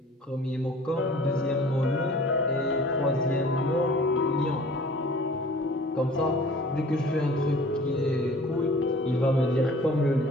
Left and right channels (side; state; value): both; normal; correlation 0.48